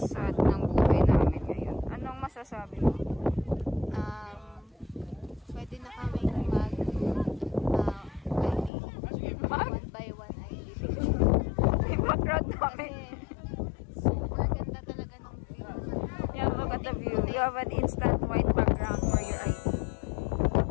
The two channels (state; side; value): drops out; right; at 8.7 s